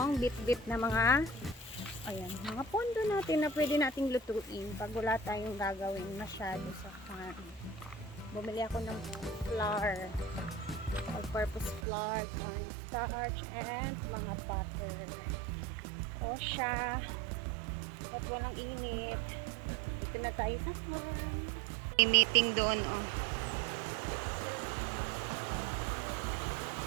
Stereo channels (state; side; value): drops out; left; at 11.9 s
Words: bit-bit na mga mga pondo natin na pwede nating lutuin pag wala tayong gagawin masyado sa farm. Bumili ako ng flour. All-purpose flour, cornstarch, and mga butter. O siya. At walang init. Dito na tayo sa farm. May meeting doon, oh.